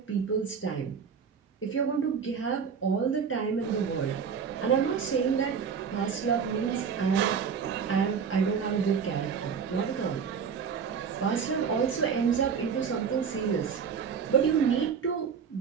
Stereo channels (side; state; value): left; quieter; 6.5 dB